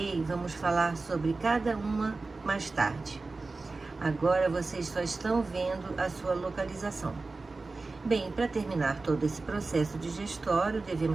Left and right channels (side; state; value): left; quieter; 3.7 dB